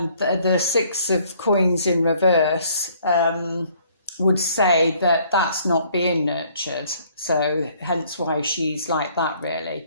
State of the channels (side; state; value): both; inverted; correlation -0.61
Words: the Six of Coins in reverse would say that that's not being nurtured. So hence why she's like that,